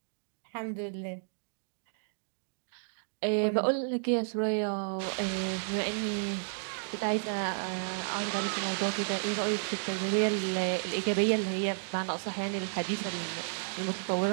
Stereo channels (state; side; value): silent; left; digital silence